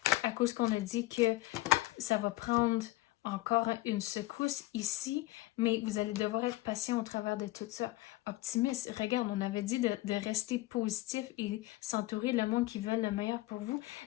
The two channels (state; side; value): quieter; right; 18.8 dB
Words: à cause qu'on a dit que ça va prendre encore une secousse ici, mais vous allez devoir être patient au travers de tout ça. Optimiste, regarde, on avait dit de rester positif et s'entourer le monde qui veut le meilleur pour vous.